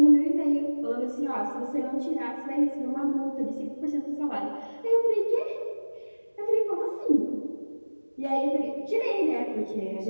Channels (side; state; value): both; inverted; correlation -1.00